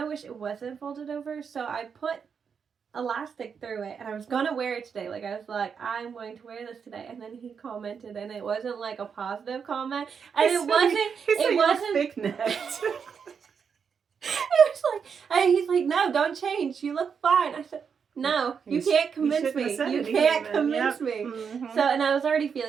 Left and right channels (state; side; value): quieter; left; 6.5 dB